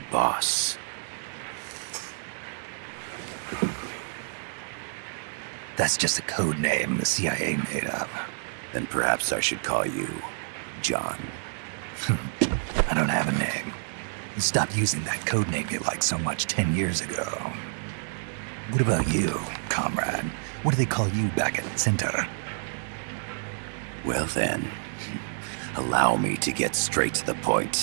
Boss. That's just a code name the CIA made up. Then perhaps I should call you John. I don't have a name. You stopped using that code name you liked so much 10 years ago. What about you, comrade? What do they call you back at Center? Well then, allow me to get straight to the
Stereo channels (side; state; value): left; silent; digital silence